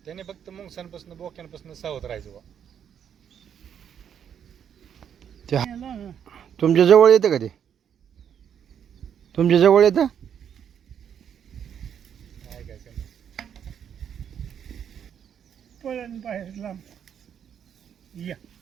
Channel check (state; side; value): quieter; left; 8.6 dB